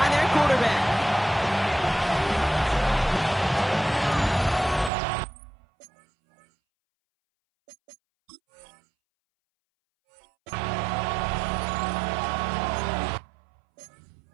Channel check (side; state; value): left; drops out; at 4.9 s